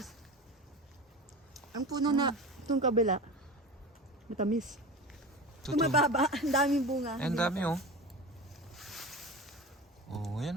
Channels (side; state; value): both; normal; correlation 0.30